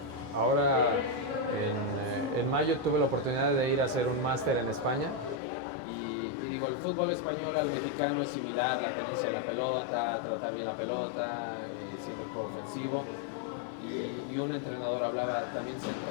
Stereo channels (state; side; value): drops out; right; at 5.4 s